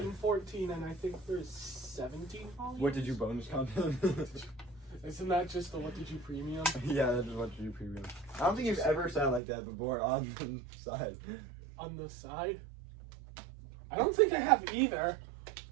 14 and I think there's 17 volumes. What did you bonus content? Isn't that just the What Did You Premium? Yeah, that's what you premium. I don't think you've ever sounded like that before on the side. On the side? I don't think I have either.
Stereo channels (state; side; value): drops out; left; at 9.4 s